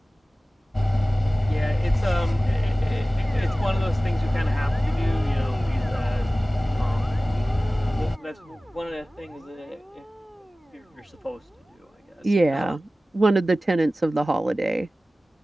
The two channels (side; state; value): both; normal; correlation 0.97